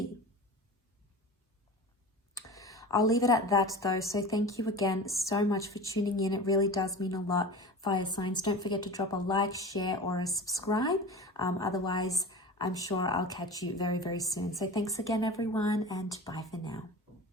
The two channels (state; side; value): normal; both; correlation 0.33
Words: I'll leave it at that though. So thank you again so much for tuning in. It really does mean a lot, fire signs. Don't forget to drop a like, share, or a subscribe. Otherwise, I'm sure I'll catch you very, very soon. So thanks again, everyone, and bye for now.